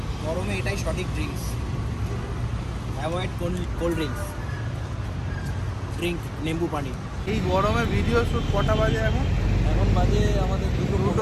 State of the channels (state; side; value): identical; both; correlation 1.00